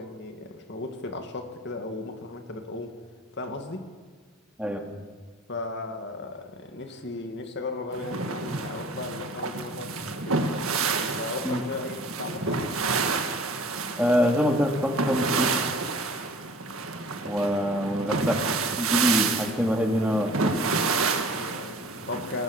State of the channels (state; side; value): normal; both; correlation 0.47